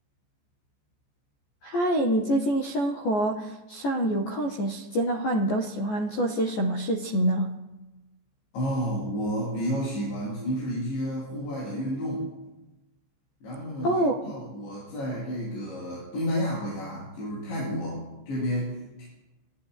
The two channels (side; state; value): right; late; 14 ms